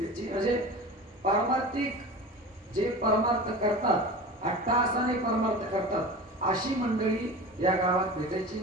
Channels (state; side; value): normal; both; correlation 0.33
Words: याची म्हणजे पारमार्थिक जे परमार्थ करतात, अट्टहासाने परमार्थ करतात, अशी मंडळी या गावात भेटायची.